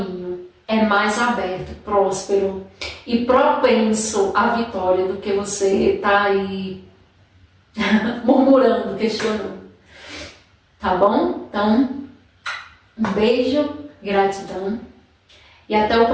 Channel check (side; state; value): both; identical; correlation 1.00